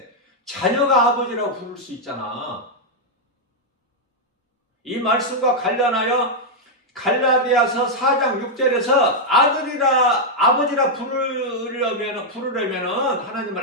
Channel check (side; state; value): both; normal; correlation -0.03